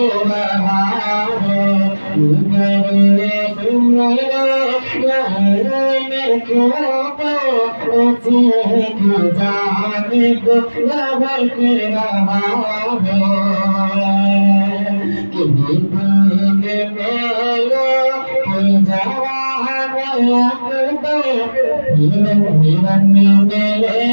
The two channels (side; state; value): both; inverted; correlation -1.00